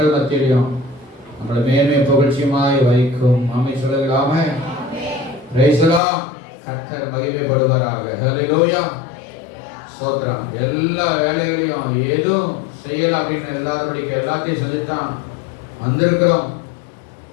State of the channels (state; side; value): drops out; right; at 6.0 s